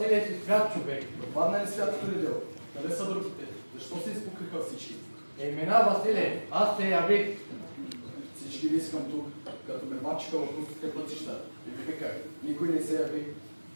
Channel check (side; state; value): both; inverted; correlation -1.00